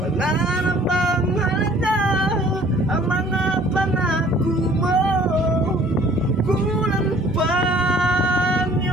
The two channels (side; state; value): both; normal; correlation 0.55